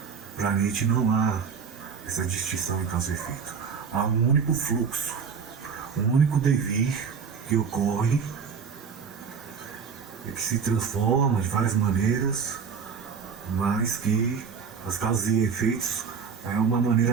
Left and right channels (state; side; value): quieter; left; 6.1 dB